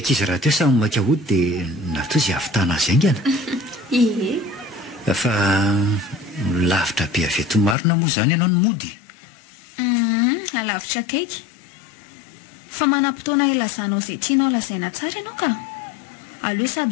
raha teo samy maika hody dia natao izay avitana azy aingana fa lavitra be aveto marina moa izany ianao ny mody alavitra kaiky fa manam-potoana ilazanao izay tianao lazaina tsara ianao ka aleo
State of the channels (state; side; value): drops out; right; at 7.8 s